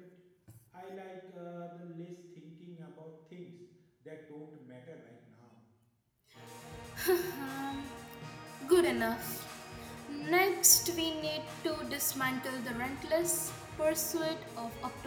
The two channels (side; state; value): both; identical; correlation 1.00